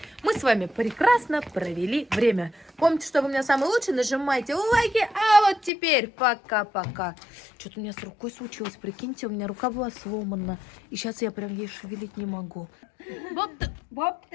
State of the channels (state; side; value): drops out; right; at 5.7 s